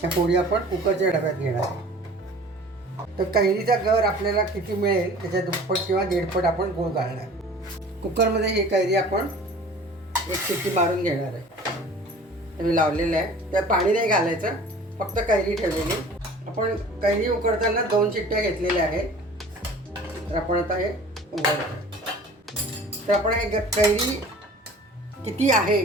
त्या फोडी आपण कुकरच्या डब्यात घेणार आहे. तर कैरीचा गर आपल्याला किती मिळेल त्याच्या दुप्पट किंवा दीडपट आपण गूळ घालणार. कुकरमध्ये ही कैरी आपण एक शिट्टी मारून घेणार आहे. मी लावलेलं आहे, त्यात पाणी नाही घालायचं, फक्त कैरी ठेवलेली. आपण कैरी उकडताना 2 शिट्ट्या घेतलेल्या आहेत. तर आपण आता हे उघडतो. तर आपण हे कैरी किती आहे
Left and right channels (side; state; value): both; normal; correlation 0.45